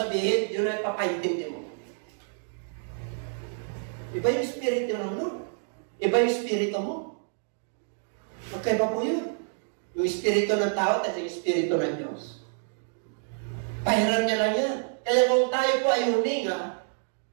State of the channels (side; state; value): left; silent; digital silence